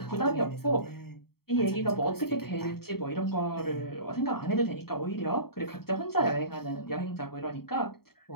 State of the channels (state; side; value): late; right; 0.95 ms